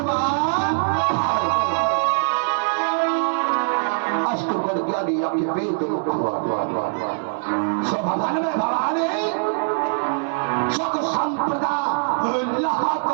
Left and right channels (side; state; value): left; silent; digital silence